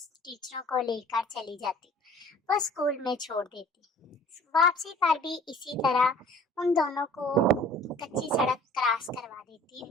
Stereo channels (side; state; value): both; normal; correlation 0.50